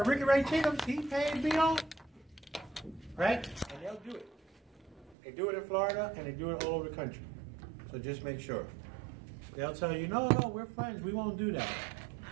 Ricky Ray Chickums, he paid me off. Right? And they'll do it. They do it in Florida, and they do it all over the country. So just make sure. They'll tell you, no, we're friends. We won't do that.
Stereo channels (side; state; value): left; drops out; at 5.2 s